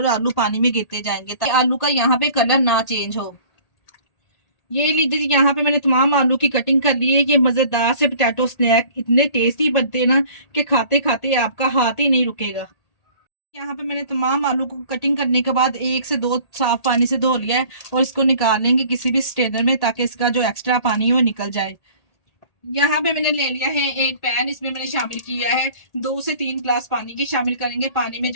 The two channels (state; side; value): late; right; 1.8 ms